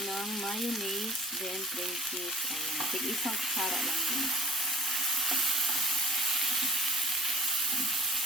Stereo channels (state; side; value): normal; both; correlation 0.45